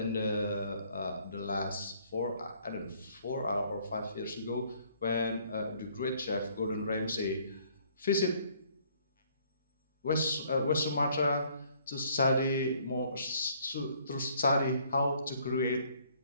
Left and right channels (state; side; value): inverted; both; correlation -0.63